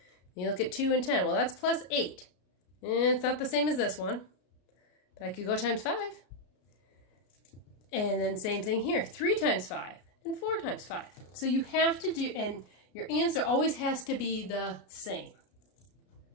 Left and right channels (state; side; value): late; right; 33 ms